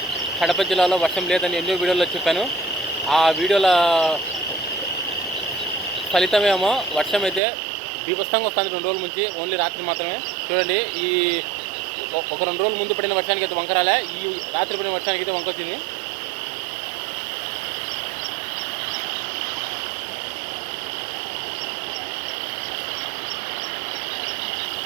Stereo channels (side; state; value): left; drops out; at 7.4 s